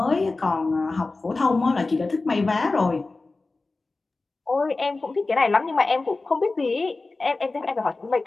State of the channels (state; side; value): quieter; right; 3.5 dB